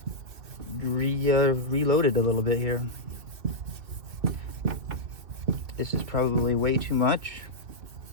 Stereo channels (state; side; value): late; left; 2.6 ms